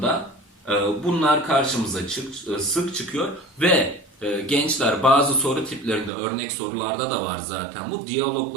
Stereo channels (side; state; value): left; drops out; at 6.1 s